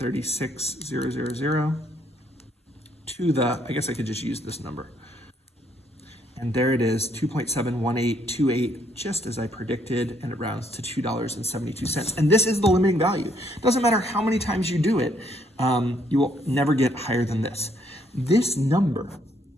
to the, I guess I could just use this number. And there it is, 2.71828, just as I predicted, and it rounds to $2.72. And this is the limiting value. It doesn't matter how many times you do it, you will never get higher than this. This number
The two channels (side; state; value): both; normal; correlation 0.69